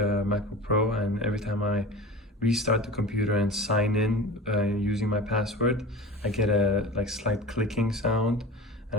Pro, and every time I restart the computer and sign in using my password, I get a slight clicking sound.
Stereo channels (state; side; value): normal; both; correlation 0.34